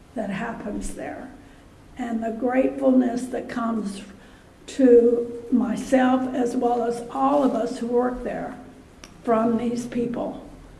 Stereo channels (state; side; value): identical; both; correlation 1.00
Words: that happens there, and the gratefulness that comes to myself as well as all of us who work there from these people